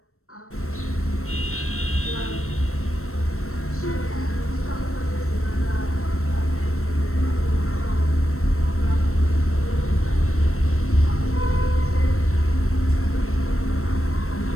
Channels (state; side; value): late; right; 0.63 ms